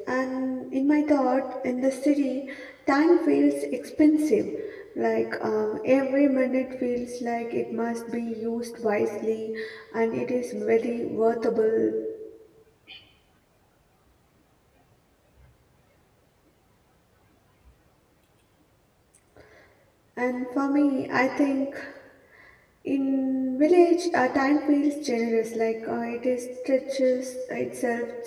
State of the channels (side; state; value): both; identical; correlation 1.00